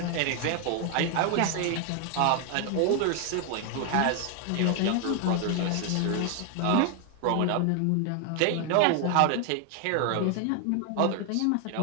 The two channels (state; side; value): different; both; correlation 0.00